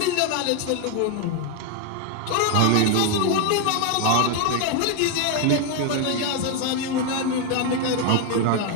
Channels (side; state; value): both; different; correlation 0.01